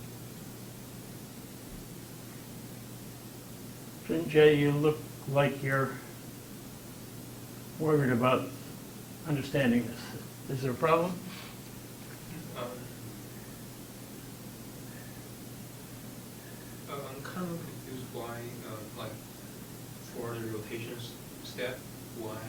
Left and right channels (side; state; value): both; identical; correlation 1.00